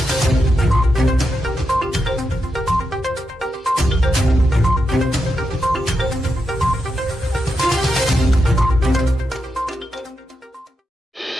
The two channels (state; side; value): normal; both; correlation 0.86